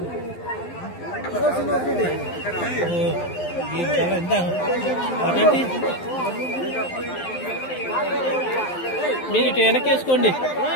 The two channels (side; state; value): right; late; 11 ms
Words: మీరు ఇటు వెనకేసుకోండి.